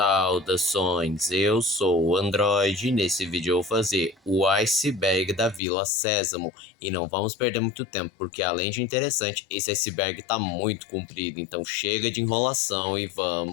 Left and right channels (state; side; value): drops out; right; at 5.6 s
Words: eu sou o Android e nesse vídeo eu vou fazer o iceberg da Vila Sésamo. E não vamos perder muito tempo, porque além de interessante, esse iceberg tá muito comprido, então chega de enrolação e